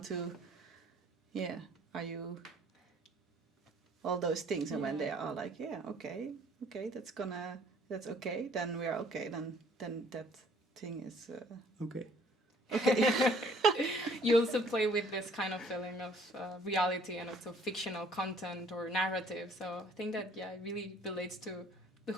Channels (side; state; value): both; normal; correlation 0.57